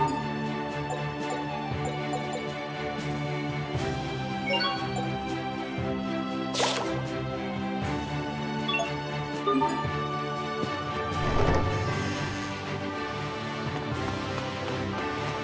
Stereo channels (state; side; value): identical; both; correlation 1.00